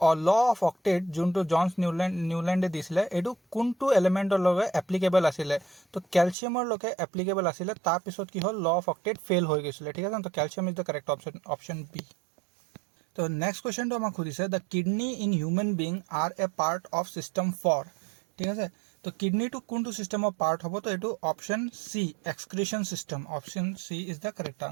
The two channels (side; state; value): left; drops out; at 6.4 s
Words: लॉ ऑफ ऑक्टेट जोंटो जॉन्स न्यूलैंडे दिसिले एडु कोनटो एलिमेंटर लगे एप्लीकेबल आसिले तो कैल्शियमर लगे एप्लीकेबल आसिले तार पिছত की हल लॉ ऑफ ऑक्टेट फेल हो गयसिले ठीक है तो calcium is the correct option B तो नेक्स्ट क्वेश्चन तो हमक खुदिसे the kidney in human being are a part of system 4 ठीक है तो किडनी टू कोनटो सिस्टम ऑफ पार्ट हबो तो एटु option C excretion system option C is the correct